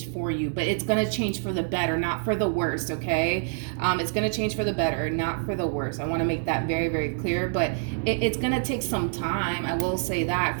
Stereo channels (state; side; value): silent; left; 61 dB below the other